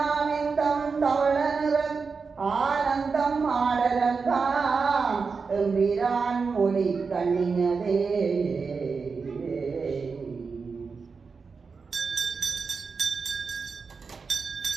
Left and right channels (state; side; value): quieter; left; 5.0 dB